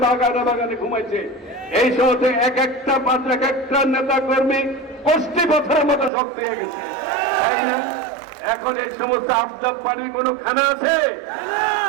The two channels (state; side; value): drops out; left; at 6.1 s